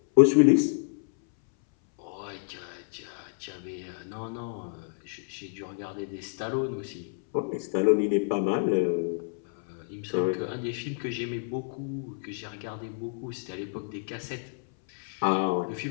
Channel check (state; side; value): silent; right; 58 dB below the other